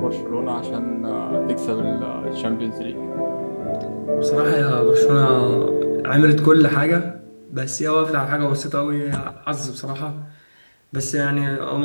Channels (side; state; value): both; inverted; correlation -1.00